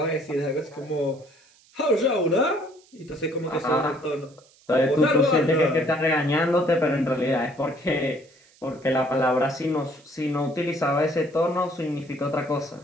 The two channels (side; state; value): right; noise; hiss, 29 dB below the sound